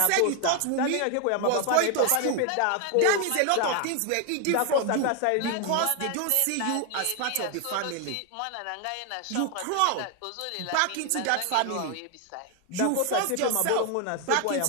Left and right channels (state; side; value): different; both; correlation 0.00